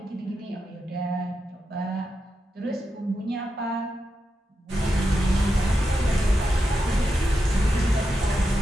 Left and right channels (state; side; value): normal; both; correlation 0.87